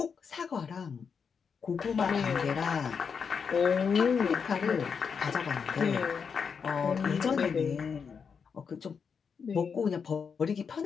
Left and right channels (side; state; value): right; quieter; 6.2 dB